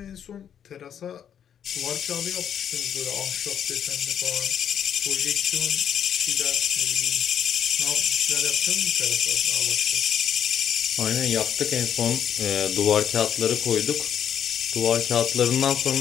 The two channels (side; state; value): right; quieter; 8.9 dB